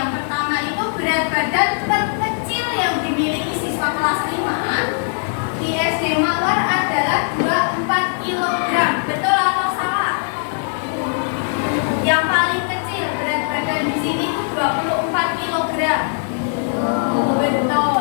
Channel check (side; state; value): right; silent; digital silence